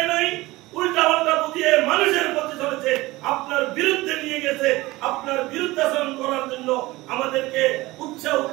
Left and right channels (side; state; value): left; quieter; 19.8 dB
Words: নাই, উল্টা পাল্টা বুঝিয়ে মানুষের পথে চলেছে, আপনার বিরুদ্ধে নিয়ে গেছে, আপনার বিরুদ্ধাচরণ করার জন্য আমাদেরকে উৎসাহ